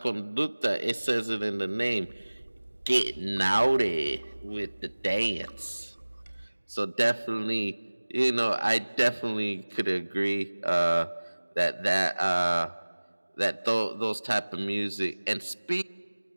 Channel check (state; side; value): inverted; both; correlation -1.00